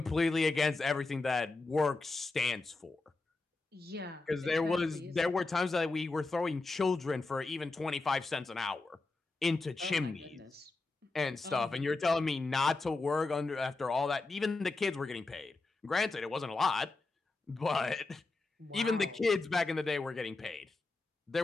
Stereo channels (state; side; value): quieter; right; 3.5 dB